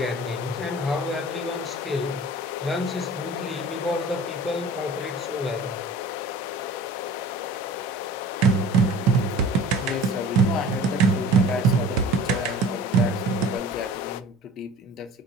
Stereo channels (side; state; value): both; normal; correlation 0.43